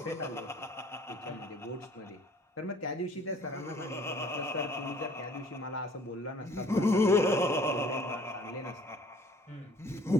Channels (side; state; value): both; normal; correlation 0.54